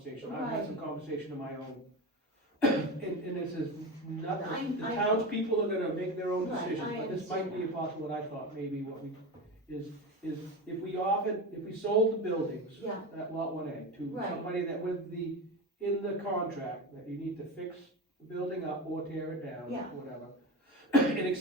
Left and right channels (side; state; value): both; normal; correlation 0.23